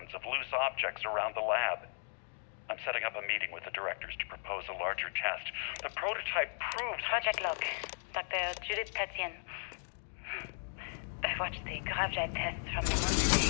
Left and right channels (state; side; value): silent; right; digital silence